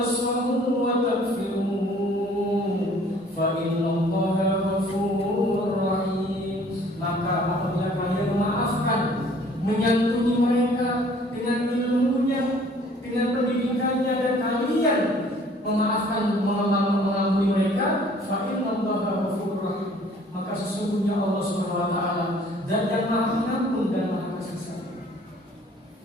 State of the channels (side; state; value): both; normal; correlation 0.55